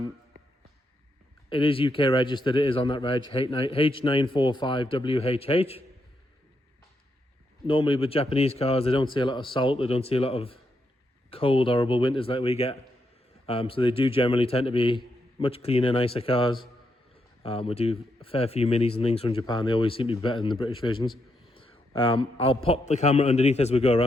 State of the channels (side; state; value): both; normal; correlation 0.81